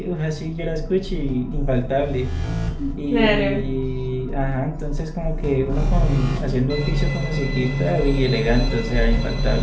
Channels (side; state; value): both; identical; correlation 1.00